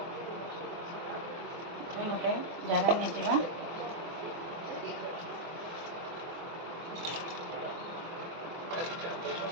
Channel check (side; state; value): left; late; 24 ms